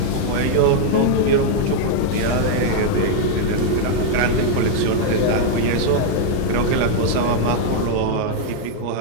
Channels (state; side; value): different; both; correlation -0.01